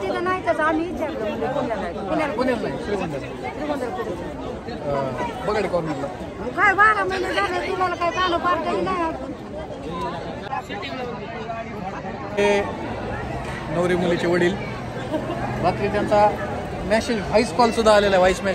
तिथं नाही तर आम्ही विचारलं म्हणजे पुण्याला आहे. पुण्याला नाही, श्रीगोंद्याला. श्रीगोंद्याला कुठे? बगाडी करून मग काय 12 महिने झाले तुम्हाला काय कानं पार केली नाही. हे नवरी मुलीचे वडील. रात्री त्यांचा मेसेज व्हॉइस कॉल सुद्धा आलेला आहे. व्हॉइस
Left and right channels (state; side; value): identical; both; correlation 1.00